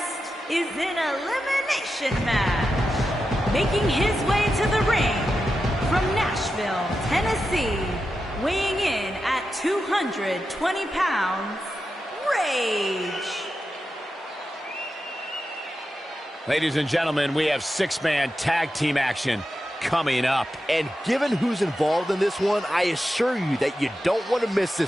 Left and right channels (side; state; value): both; normal; correlation 0.90